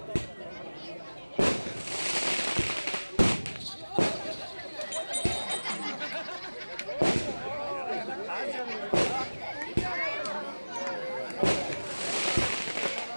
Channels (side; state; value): both; inverted; correlation -1.00